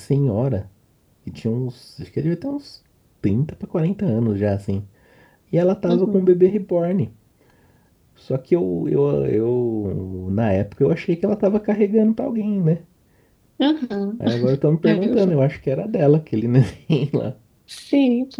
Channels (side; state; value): both; identical; correlation 1.00